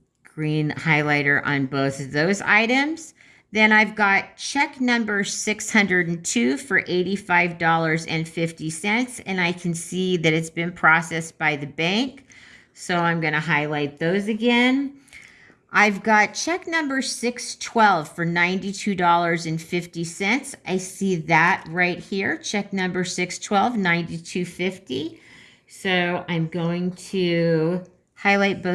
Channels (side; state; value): both; identical; correlation 1.00